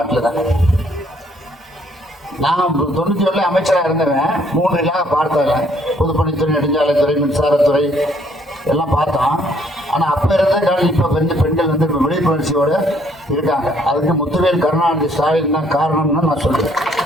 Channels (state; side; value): normal; both; correlation 0.65